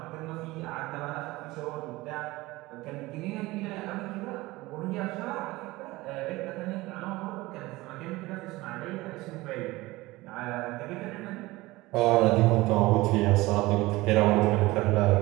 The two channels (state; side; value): quieter; left; 20.1 dB